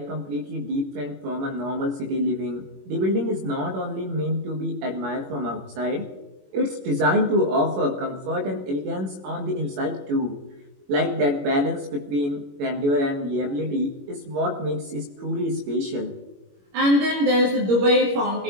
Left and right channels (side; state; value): left; late; 21 ms